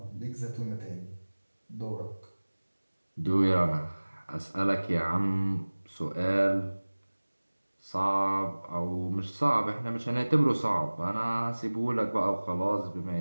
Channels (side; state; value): both; inverted; correlation -1.00